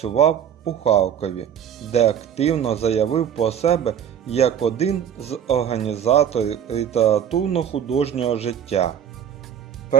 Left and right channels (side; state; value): left; quieter; 9.1 dB